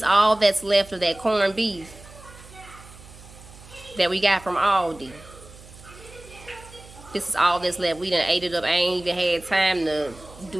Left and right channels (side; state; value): right; noise; hum, 20 dB below the sound